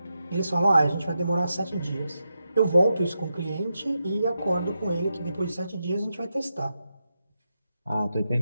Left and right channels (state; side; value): inverted; both; correlation -0.87